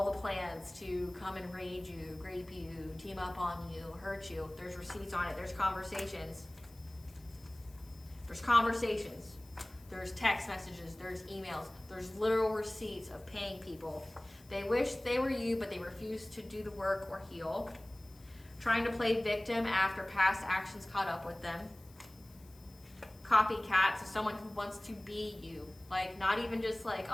the plans to come and raid you, grape you, team up on you, hurt you. There's receipts on it. There's conversations. There's text messages. There's emails. There's literal receipts of paying people. They wish they were you, but they refuse to do the work or heal. Trying to play victim after past actions caught up with them. Copycat, so someone who wants to be you. Not even just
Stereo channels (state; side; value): noise; left; hiss, 26 dB below the sound